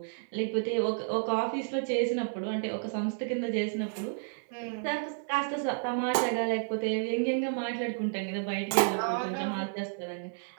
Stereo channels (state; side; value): silent; left; 57 dB below the other